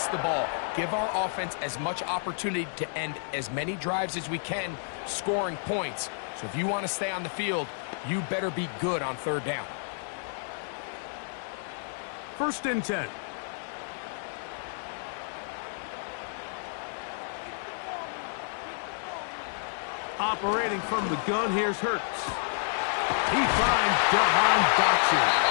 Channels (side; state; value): right; silent; digital silence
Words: the ball, give our offense as much opportunity to end as many drives as we can, scoring points. So if you want to stay on the field, you better be good on 3rd down. 1st and 10. Operating from the gun, here's Hurts. He finds Jahan Dotson.